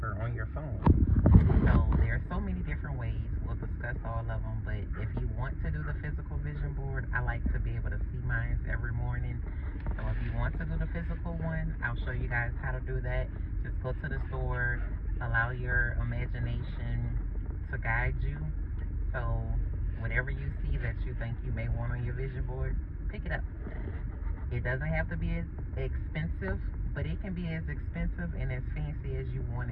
on your phone. So there are so many different ways. We'll discuss all of them, but if you want to do the physical vision board, I like to be able to see mine every morning. So if you want to do the physical one, I'll show you guys how to do that. Just go to the store, allow your imagination to guide you. So whatever you see that you think you may want on your vision board, pick it up. It doesn't have to be as expensive, but it can be as expensive and as fancy as you want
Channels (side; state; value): both; identical; correlation 1.00